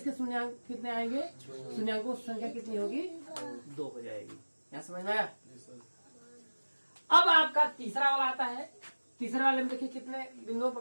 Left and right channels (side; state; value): both; inverted; correlation -1.00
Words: शून्याङ्क कितने आएंगे, शून्याङ्कों की संख्या कितनी होगी, 2 हो जाएगी। यहाँ समझ में आया। अब आपका तीसरा वाला आता है, तीसरे वाले में देखिए कितने बिंदुओं